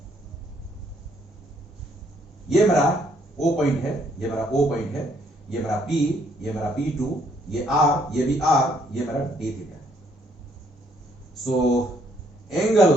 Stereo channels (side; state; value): both; normal; correlation 0.68